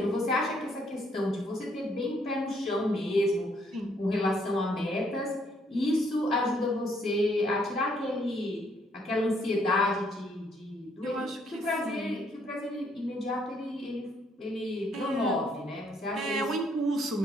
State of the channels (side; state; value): both; normal; correlation 0.69